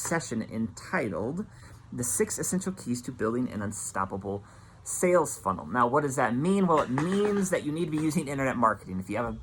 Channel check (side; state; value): both; identical; correlation 1.00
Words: entitled The 6 Essential Keys to Building an Unstoppable Sales Funnel. Now, what does that mean? Well, it means that you need to be using internet marketing. If you have a